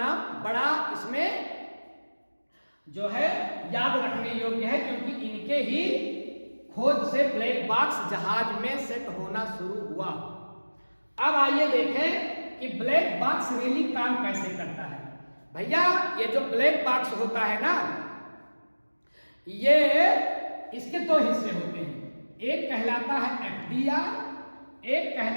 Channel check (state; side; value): inverted; both; correlation -1.00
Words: बड़ा इसमें जो है याद रखने योग्य है, क्योंकि इनके ही खोज से ब्लैक बॉक्स जहाज में सेट होना शुरू हुआ। अब आइए देखें कि ब्लैक बॉक्स रियली काम कैसे करता है। भैया, ये जो ब्लैक बॉक्स होता है ना, ये इसके 2 हिस्से होते हैं। एक कहलाता है एफडीआर, एक